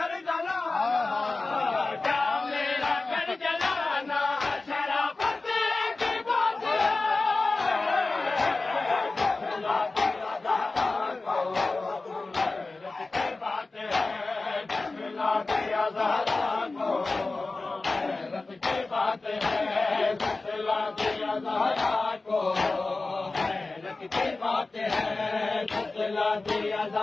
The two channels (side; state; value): right; quieter; 3.4 dB